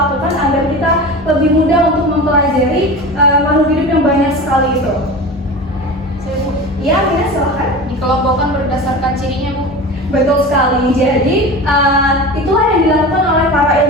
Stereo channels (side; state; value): both; normal; correlation 0.31